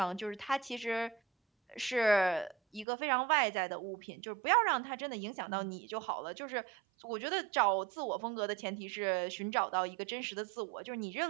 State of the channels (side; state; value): left; drops out; at 2.9 s